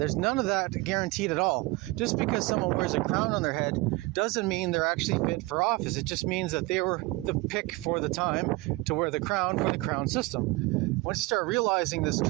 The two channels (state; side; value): quieter; left; 22.4 dB